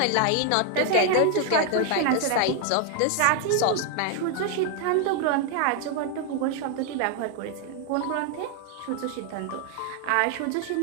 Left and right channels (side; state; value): both; different; correlation 0.00